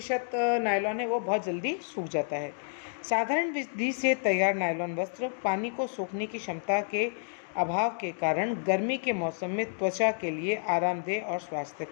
नायलॉन है वो बहुत जल्दी सूख जाता है। साधारण विधि से तैयार नायलॉन वस्त्र पानी को सूखने की क्षमता के अभाव के कारण गर्मी के मौसम में त्वचा के लिए आरामदेह और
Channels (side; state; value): right; silent; digital silence